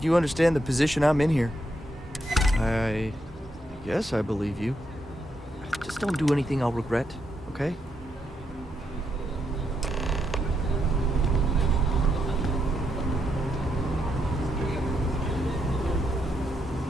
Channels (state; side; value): normal; both; correlation 0.80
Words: you understand the position I'm in here. I guess I believe you. Just don't do anything I'll regret, okay?